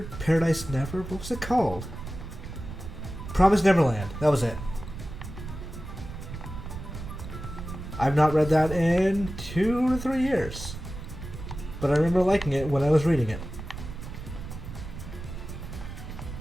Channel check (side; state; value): right; noise; rumble, 10 dB below the sound